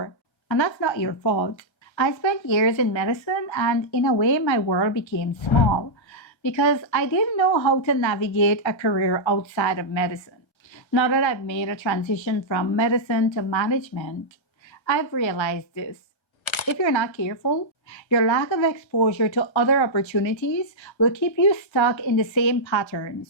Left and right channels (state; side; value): late; right; 1.3 ms